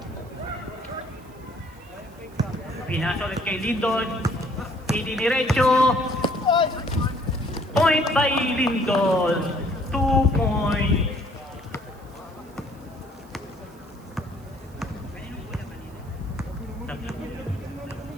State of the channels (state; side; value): noise; right; hiss, 28 dB below the sound